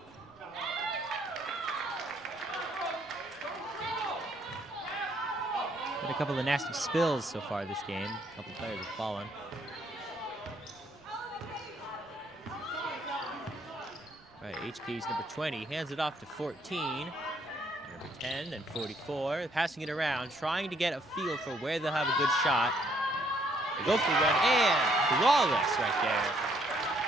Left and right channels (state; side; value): noise; right; rumble, 30 dB below the sound